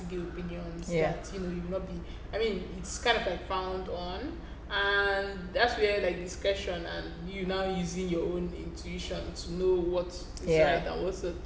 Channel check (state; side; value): identical; both; correlation 1.00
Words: opinions that you will not be. I mean, it's kind of like frowned on, and that's where like discretion and you now using your own intuition to know what is right and what's not